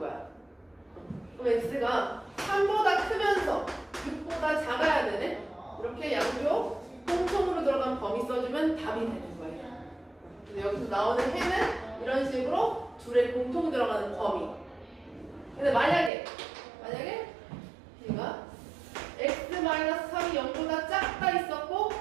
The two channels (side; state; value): left; drops out; at 16.1 s